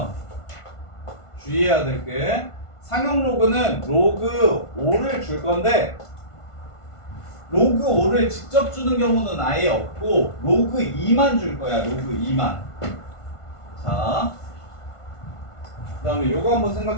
주의해야 될 게 상형 로그는 로그 5를 줄 건데 로그 5를 직접 주는 경우는 아예 없고 로그 2만 줄 거야. 로그 2만. 자, 그 다음에 요거 한번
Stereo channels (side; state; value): right; late; 1.5 ms